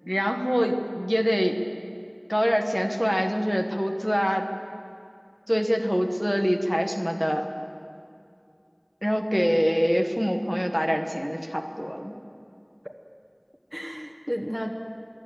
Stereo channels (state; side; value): identical; both; correlation 1.00